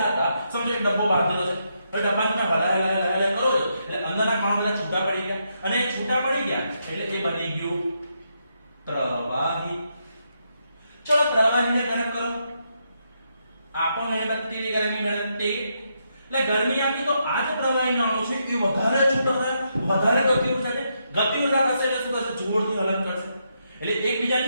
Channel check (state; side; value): inverted; both; correlation -0.80